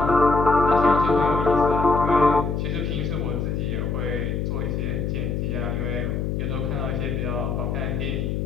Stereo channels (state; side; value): noise; left; hum, 1 dB below the sound